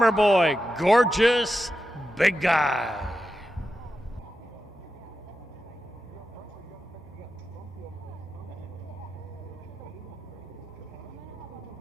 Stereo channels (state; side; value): normal; both; correlation 0.90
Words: Boy, Gorgeous Big Guy.